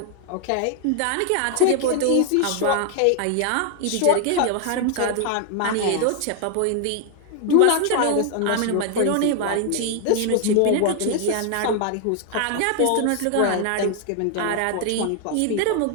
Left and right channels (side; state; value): both; different; correlation 0.00